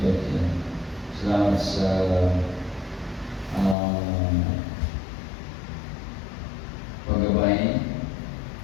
Salamat sa paggabay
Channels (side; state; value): right; drops out; at 3.8 s